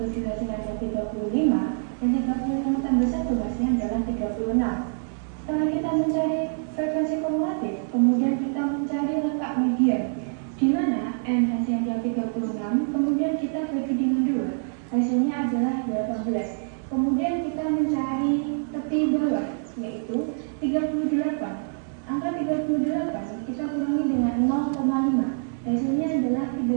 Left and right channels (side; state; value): left; silent; digital silence